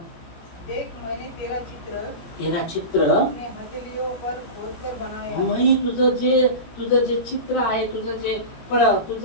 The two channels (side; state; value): right; late; 18 ms